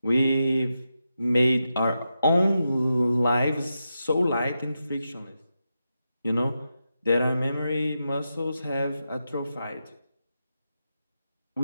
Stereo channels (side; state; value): both; inverted; correlation -0.88